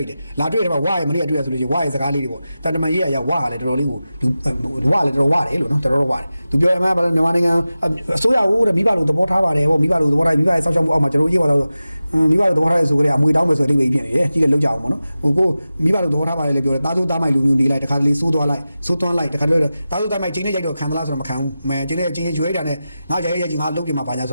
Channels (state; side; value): inverted; both; correlation -0.94